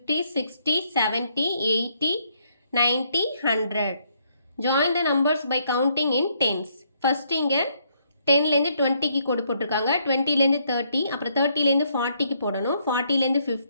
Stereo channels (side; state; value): both; inverted; correlation -0.71